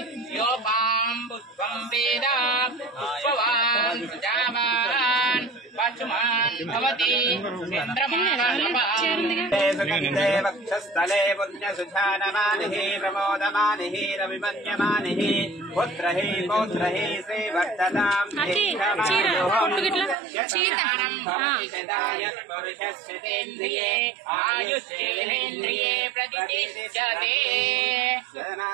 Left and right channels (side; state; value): left; drops out; at 20.2 s